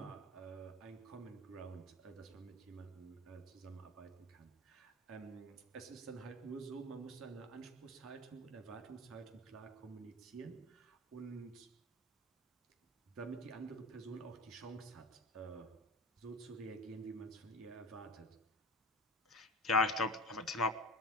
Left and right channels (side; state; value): both; normal; correlation 0.32